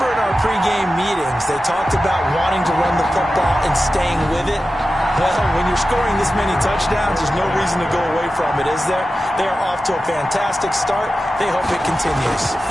in our pregame meetings, they talked about wanting to run the football and staying with it. Well, when you're scoring this many touchdowns, there's no reason to go away from it, is there? They are off to a fantastic start. They hope it continues.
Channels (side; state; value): both; normal; correlation 0.93